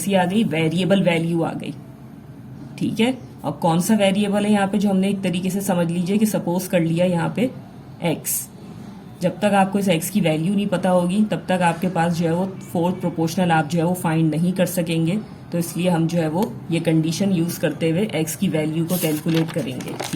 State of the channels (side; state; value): both; identical; correlation 1.00